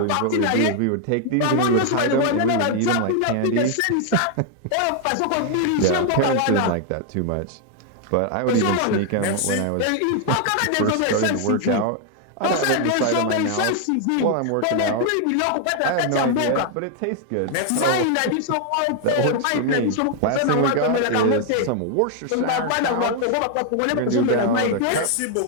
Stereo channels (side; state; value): both; different; correlation 0.00